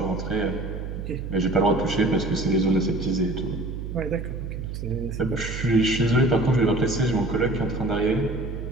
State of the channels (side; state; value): right; noise; hum, 6 dB below the sound